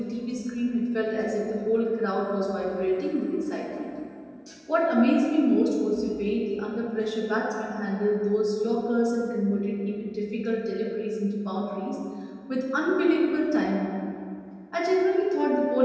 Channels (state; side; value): identical; both; correlation 1.00